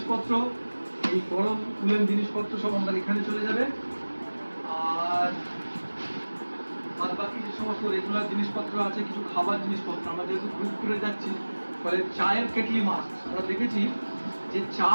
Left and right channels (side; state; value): both; inverted; correlation -1.00